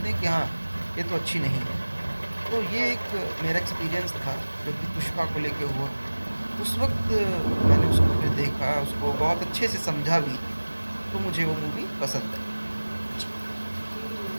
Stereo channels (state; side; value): inverted; both; correlation -1.00